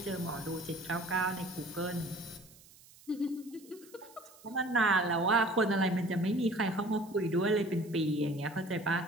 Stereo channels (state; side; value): noise; right; hiss, 24 dB below the sound